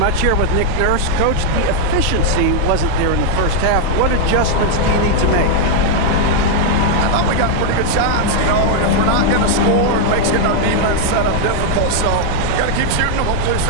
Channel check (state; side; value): different; both; correlation 0.00